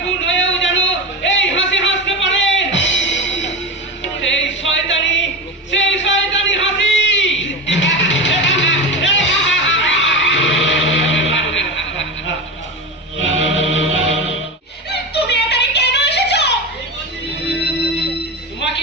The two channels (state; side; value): normal; both; correlation 0.23